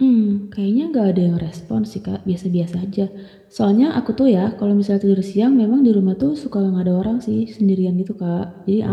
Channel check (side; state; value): both; identical; correlation 1.00